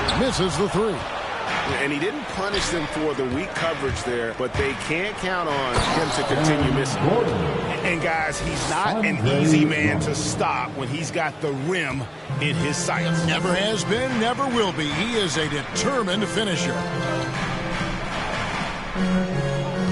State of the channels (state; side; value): identical; both; correlation 1.00